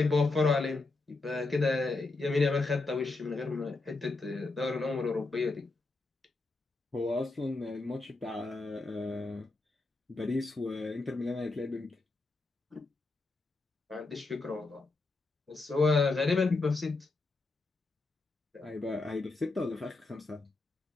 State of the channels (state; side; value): quieter; right; 3.4 dB